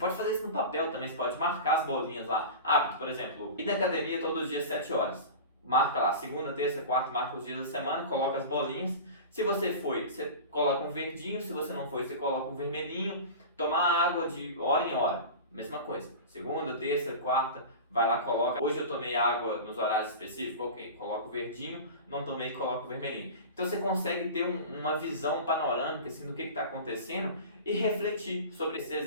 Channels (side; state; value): both; inverted; correlation -0.32